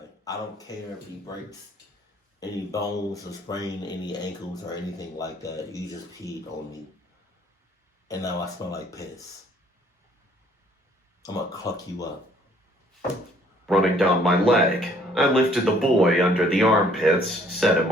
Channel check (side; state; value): both; normal; correlation 0.61